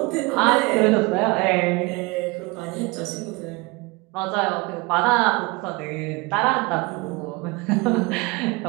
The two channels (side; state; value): left; quieter; 25.3 dB